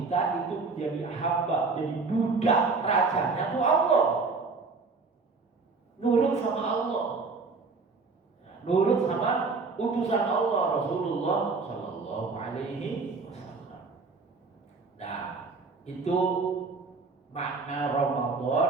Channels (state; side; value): quieter; left; 4.2 dB